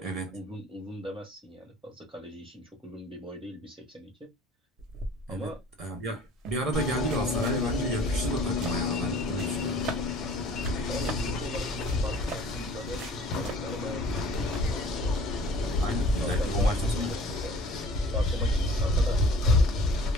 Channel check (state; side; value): normal; both; correlation 0.50